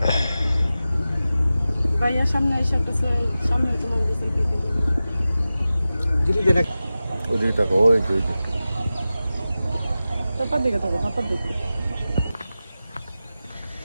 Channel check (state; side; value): inverted; both; correlation -0.94